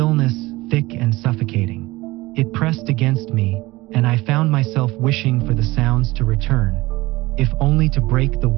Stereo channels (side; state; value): left; quieter; 20.2 dB